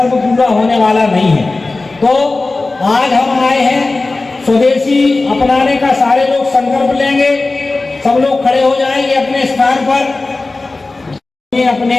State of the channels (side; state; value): right; quieter; 3.4 dB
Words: पूरा होने वाला नहीं है। तो आज हम आए हैं, स्वदेशी अपनाने का सारे लोग संकल्प लेंगे, सब लोग खड़े हो जाएंगे अपने स्थान पर अपने